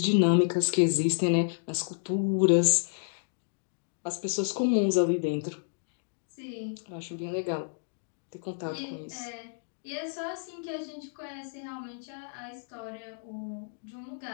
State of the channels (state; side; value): silent; right; digital silence